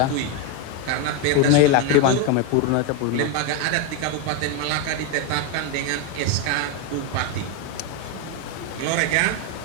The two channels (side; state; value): both; different; correlation 0.02